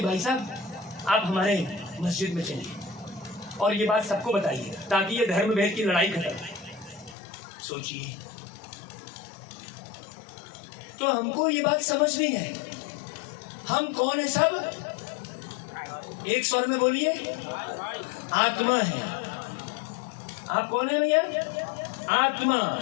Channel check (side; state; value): right; drops out; at 7.2 s